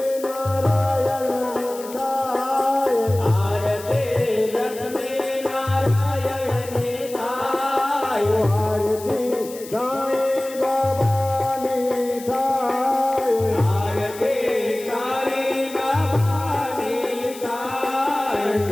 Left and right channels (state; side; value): noise; left; hiss, 16 dB below the sound